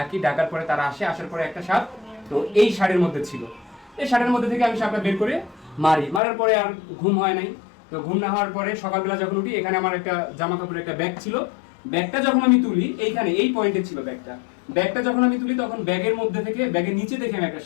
ডাকার পরে তারা আসে, আসার পরে একটা সাপ তো এই শাড়ির মধ্যে ছিল। এই শাড়ির মধ্যে থেকে আমি সাপটা বের করে মারার পরে আর ঘুম হয় নাই। তো ঘুম না হওয়ার পরে সকালবেলা যখন উঠি, এখানে আমার একটা জামা কাপড়ের একটা ব্যাগ ছিল। ব্যাগটা যখন আমি তুলি, এইখানে এই পয়েন্টে ছিল ব্যাগটা যখন আমি তুলি, তখন ব্যাগের মধ্যে থেকে ব্যাগের নিচে দেখে আমি একটা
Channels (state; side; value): drops out; right; at 6.2 s